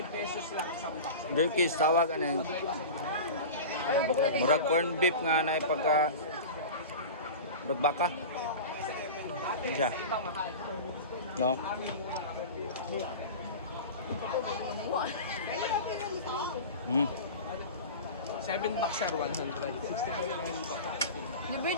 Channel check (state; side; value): inverted; both; correlation -0.31